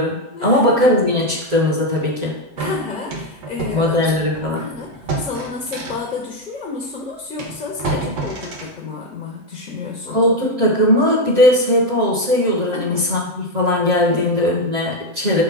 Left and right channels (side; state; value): left; late; 7.4 ms